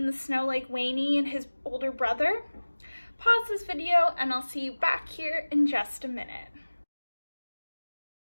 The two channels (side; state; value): both; inverted; correlation -1.00